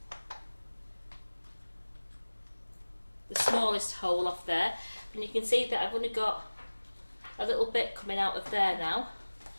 the smallest hole off there. And you can see that I've only got a little bit coming out of there now.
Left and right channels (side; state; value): both; inverted; correlation -1.00